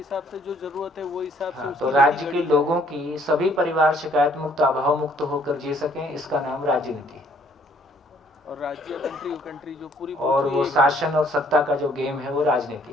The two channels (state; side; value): normal; both; correlation 0.62